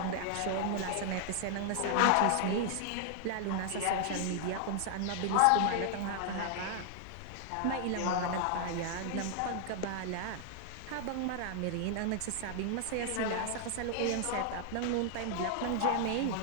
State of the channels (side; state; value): both; different; correlation 0.00